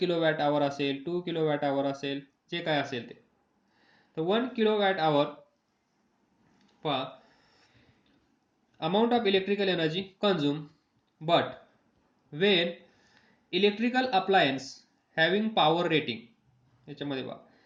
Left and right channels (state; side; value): identical; both; correlation 1.00